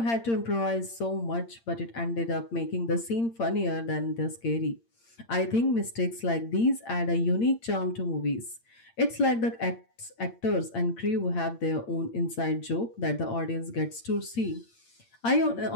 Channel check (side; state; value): right; late; 8.7 ms